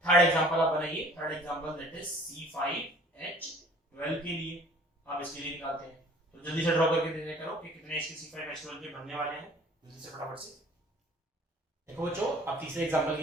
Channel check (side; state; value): both; normal; correlation 0.51